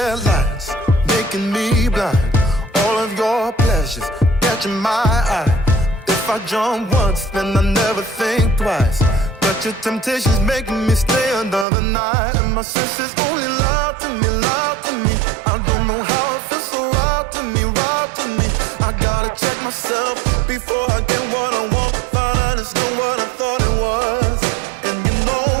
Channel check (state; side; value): drops out; left; at 11.7 s